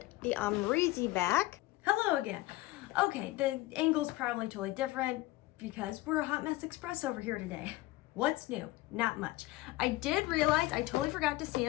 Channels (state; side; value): quieter; right; 18.7 dB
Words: the Amrezy back. Hello again. Okay, the angle's probably totally different because we're a hot mess express over here today. What's new? Not much. I did realize I totally forgot to